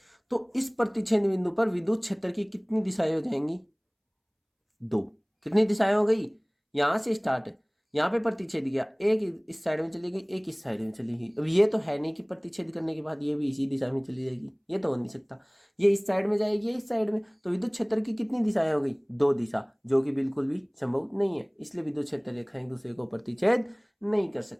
तो इस प्रतिच्छेद बिंदु पर विद्युत क्षेत्र की कितनी दिशाएं हो जाएंगी? दो। कितनी दिशाएं हो गई? यहां से स्टार्ट है, यहां पे प्रतिच्छेद किया, एक इस साइड में चली गई, एक इस साइड में चली गई। अब ये तो है नहीं कि प्रतिच्छेद करने के बाद ये भी इसी दिशा में चली जाएगी, ये तो हो नहीं सकता। ये इस साइड में जाएगी, ये इस साइड में, तो विद्युत क्षेत्र की कितनी दिशाएं हो गई? दो दिशा, जो कि बिल्कुल भी संभव नहीं है। इसलिए विद्युत क्षेत्र रेखाएं एक दूसरे को प्रतिच्छेद नहीं कर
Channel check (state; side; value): identical; both; correlation 1.00